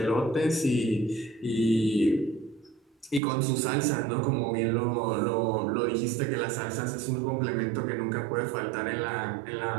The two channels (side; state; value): left; drops out; at 3.2 s